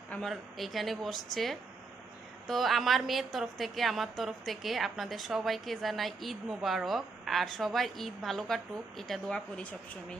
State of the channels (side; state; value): left; quieter; 4.0 dB